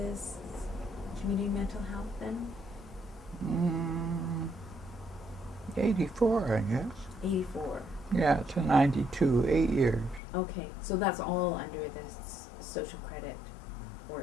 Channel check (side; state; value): right; drops out; at 10.2 s